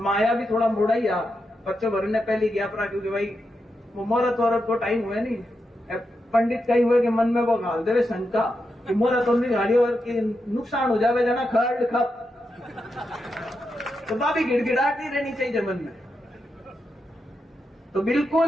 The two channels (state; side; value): normal; both; correlation 0.86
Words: भी थोड़ा मोड़ा ही आ बच्चों भर ने पहले गया पड़ा, क्योंकि भाई वो मुहूर्त वहूर्त को टाइम हुए नहीं। पंडित कई हुए कि मन में वो घाल दे शंका कि मुहूर्त नहीं घाली और कि नुकसान हो जावे जना खड़ खप, तो बाबी गिड़गिड़ाहट नहीं रहनी चाहिए मन में। तो